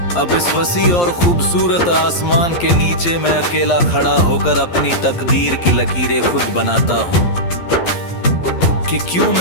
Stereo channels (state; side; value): late; right; 11 ms